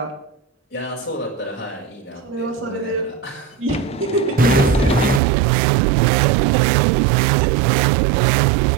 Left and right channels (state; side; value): drops out; left; at 5.2 s